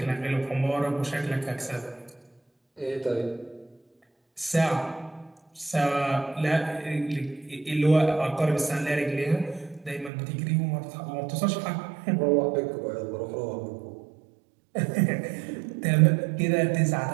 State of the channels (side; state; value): left; drops out; at 10.1 s